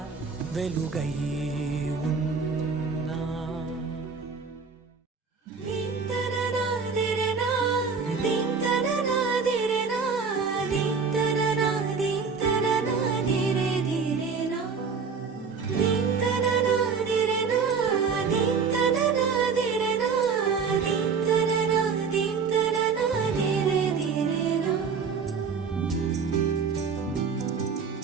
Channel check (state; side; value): quieter; left; 5.4 dB